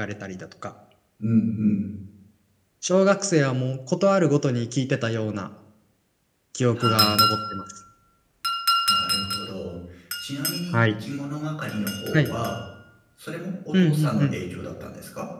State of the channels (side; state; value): both; identical; correlation 1.00